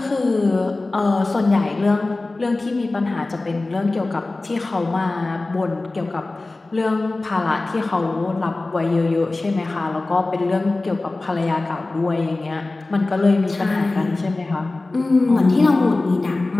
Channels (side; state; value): right; quieter; 3.1 dB